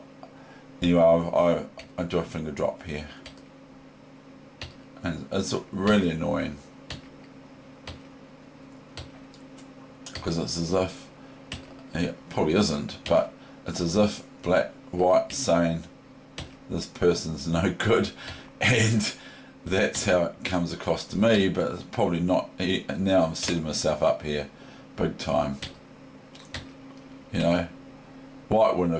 anyway, I do a finger drop here, and it's really annoying because it's as if, it probably isn't, but it's as if white saying this person's no good, and that's how it comes across to me. But it's probably not. Now I'm setting myself up here big time. You know, white wouldn't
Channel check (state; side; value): identical; both; correlation 1.00